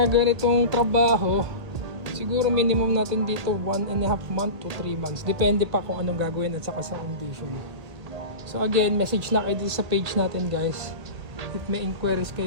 ganitong trabaho, siguro minimum natin dito 1.5 month to 3 months. Depende pa kung anong gagawin at saka sa condition. So again, message na kayo dito sa page natin guys. If may inquiries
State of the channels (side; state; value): left; late; 1.8 ms